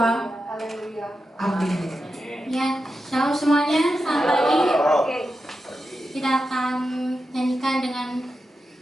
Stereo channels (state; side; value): normal; both; correlation 0.89